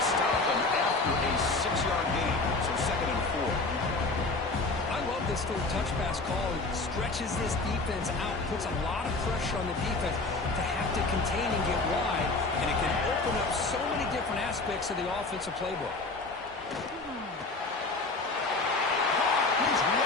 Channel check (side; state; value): right; quieter; 3.4 dB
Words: stop them after a 6-yard gain. So 2nd and 4. I love this little touch pass call. It stretches this defense out, puts a lot of pressure on the defense to have to contain and get wide, and it can open up so many different aspects of the offensive playbook. He's